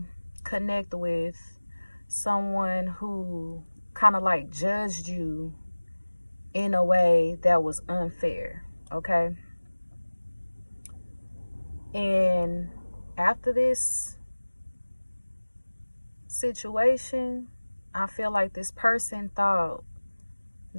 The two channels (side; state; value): both; inverted; correlation -1.00